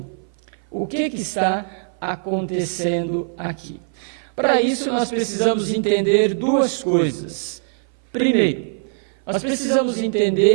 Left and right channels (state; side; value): silent; left; 58 dB below the other